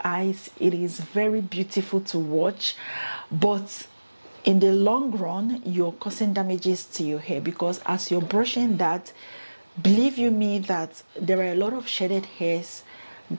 eyes. It is very beautiful to watch, but in the long run, you're causing damages to your hair, because as you're brushing that, believe you me that there are a lot of shedded hairs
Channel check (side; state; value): both; inverted; correlation -1.00